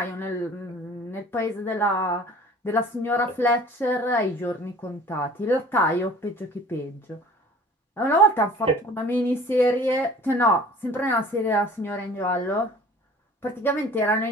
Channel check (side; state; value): both; normal; correlation 0.47